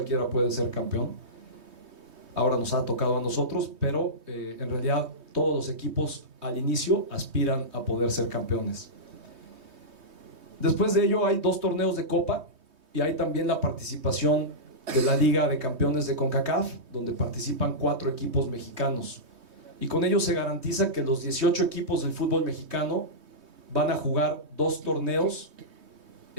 puede ser campeón. Ahora nos ha tocado a nosotros, pero en realidad todos los equipos al inicio aspiran a poder ser campeones. Después de ello hay 2 torneos de Copa, y hay también la participación de la Liga de Campeones de CONCACAF, donde participan 4 equipos mexicanos. Y con ello se garantiza que los 18 equipos del fútbol mexicano van a jugar 2 torneos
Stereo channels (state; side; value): late; left; 3.2 ms